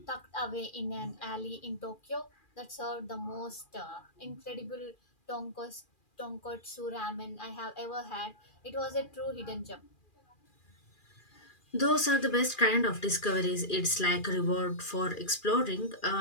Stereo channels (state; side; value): late; right; 2.4 ms